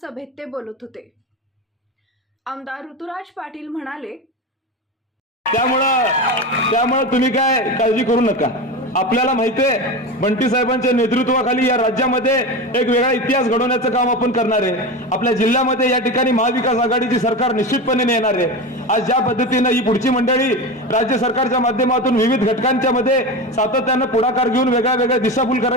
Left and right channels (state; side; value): normal; both; correlation 0.23